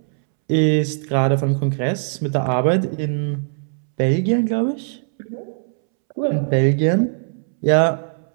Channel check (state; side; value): silent; left; 66 dB below the other